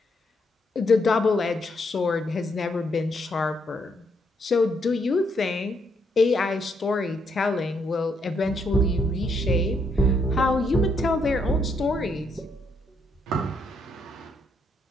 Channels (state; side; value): normal; both; correlation 0.75